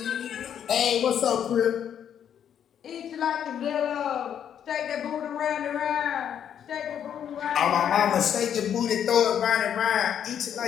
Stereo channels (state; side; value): quieter; right; 9.1 dB